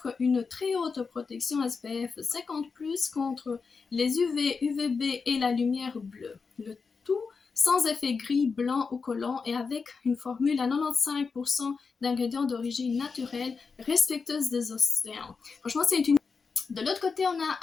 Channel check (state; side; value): quieter; right; 5.0 dB